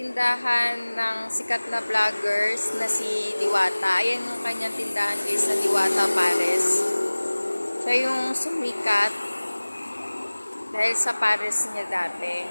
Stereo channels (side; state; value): both; inverted; correlation -1.00